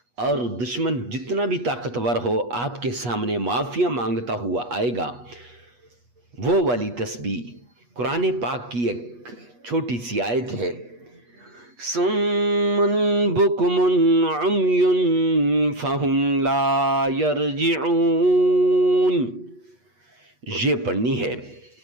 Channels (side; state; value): left; late; 8.3 ms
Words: اور دشمن جتنا بھی طاقتور ہو آپ کے سامنے معافیاں مانگتا ہوا آئے گا، وہ والی تسبیح قرآن پاک کی ایک چھوٹی سی آیت ہے، صم بکم عمی فہم لا یرجعون، یہ پڑھنی ہے،